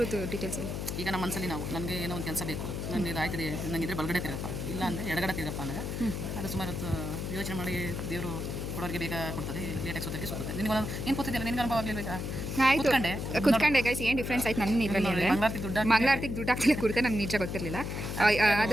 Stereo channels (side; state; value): left; noise; hum, 4 dB below the sound